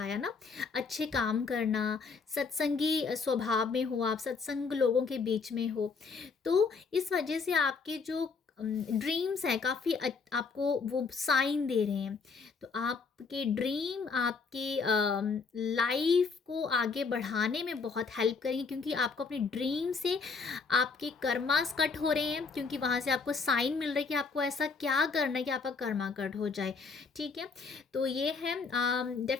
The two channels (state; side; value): quieter; right; 4.9 dB